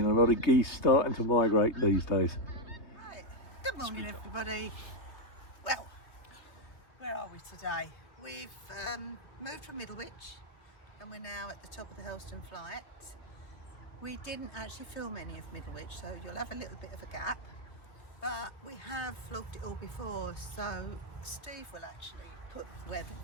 a lot of geese starting to migrate these days. Right. Good morning everybody. Well, where are we today? We've moved from Middlewich and we're now at the top of the Hurlstone flight. We didn't actually film any of Middlewich, so you'll have a little bit of a gap, but we have vlogged it all before, so Steve will actually put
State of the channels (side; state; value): right; late; 3.0 ms